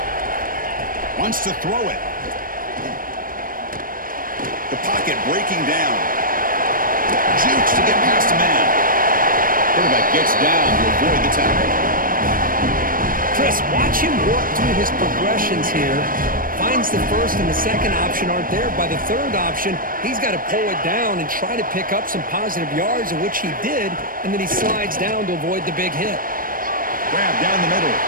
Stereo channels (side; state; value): left; late; 0.41 ms